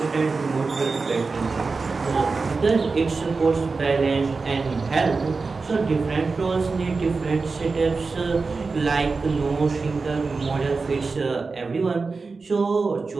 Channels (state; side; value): quieter; left; 4.2 dB